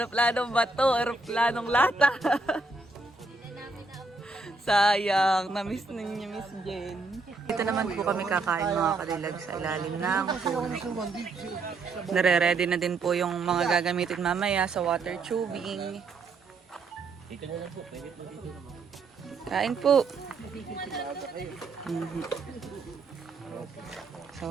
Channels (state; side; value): quieter; left; 3.5 dB